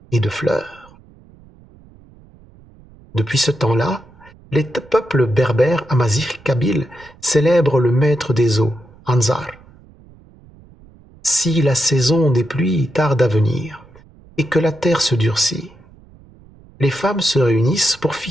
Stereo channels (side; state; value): right; noise; rumble, 25 dB below the sound